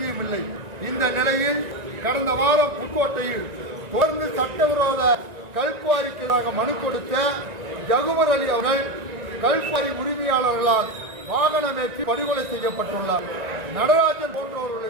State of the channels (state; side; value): late; left; 1.9 ms